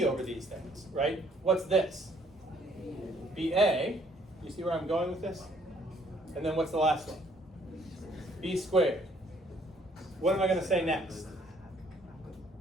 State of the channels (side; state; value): both; normal; correlation 0.63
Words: over these things, right? What's this? ba. You see where I'm going with this? And then what's the last one? B squared. What am I going to say next?